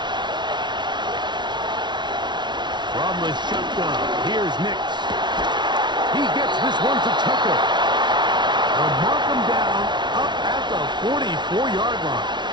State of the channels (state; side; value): late; left; 0.21 ms